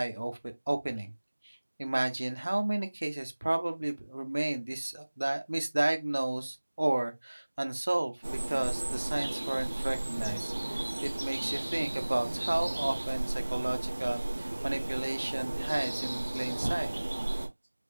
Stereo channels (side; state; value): both; inverted; correlation -1.00